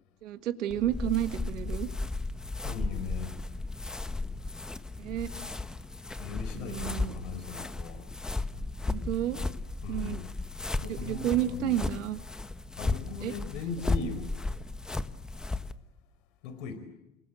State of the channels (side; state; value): both; normal; correlation 0.54